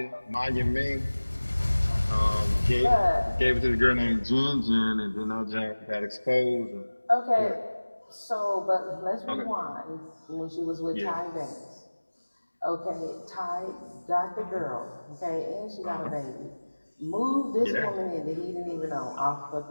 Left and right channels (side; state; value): both; inverted; correlation -1.00